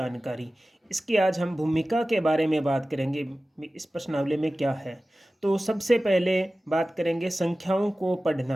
इसकी आज हम भूमिका के बारे में बात करेंगे। इस प्रश्नावली में क्या है, तो सबसे पहले बात करेंगे संख्याओं को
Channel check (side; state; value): both; normal; correlation 0.96